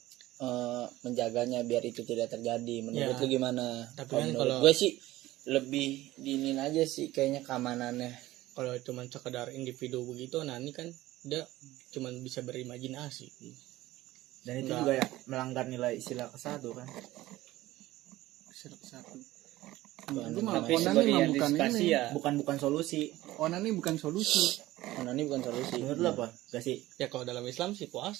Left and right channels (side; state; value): left; quieter; 16.8 dB